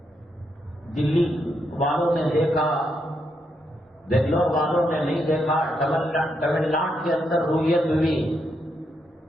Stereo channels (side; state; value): both; normal; correlation 0.80